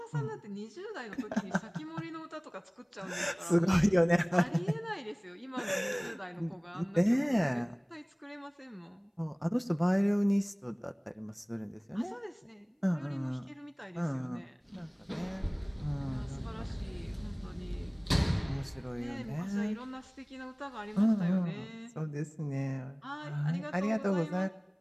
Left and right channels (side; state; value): both; identical; correlation 1.00